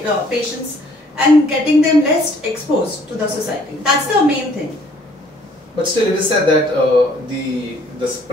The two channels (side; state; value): both; normal; correlation 0.60